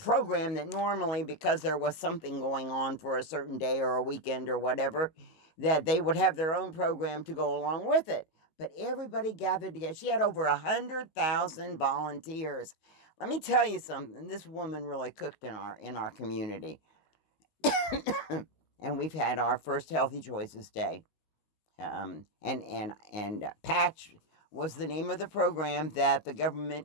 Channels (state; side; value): late; right; 19 ms